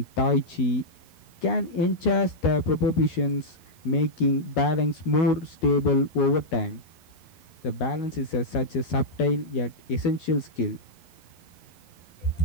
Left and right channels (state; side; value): late; right; 11 ms